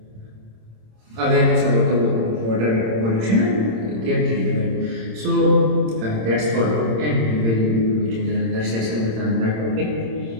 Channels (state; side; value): late; left; 26 ms